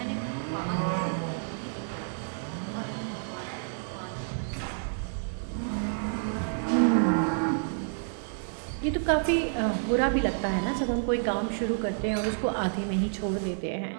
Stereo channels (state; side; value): silent; left; 58 dB below the other